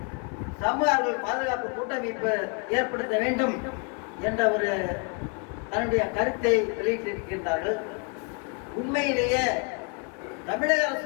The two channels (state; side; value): quieter; right; 34.5 dB